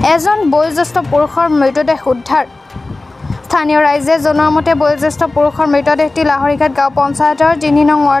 এজন বয়োজ্যেষ্ঠ পুৰুষৰ মৃতদেহ উদ্ধাৰ। স্থানীয় ৰাইজে জনোৱা মতে বয়োজ্যেষ্ঠ পুৰুষৰ মৃতদেহটি লাহৰীঘাট গাঁও পঞ্চায়তৰ ৩ নং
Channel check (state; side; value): quieter; right; 3.1 dB